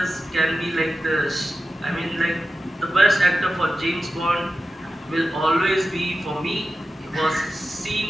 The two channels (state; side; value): normal; both; correlation 0.93